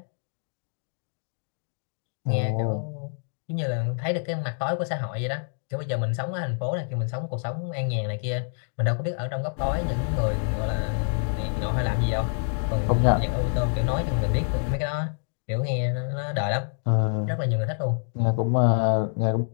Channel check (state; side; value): silent; right; digital silence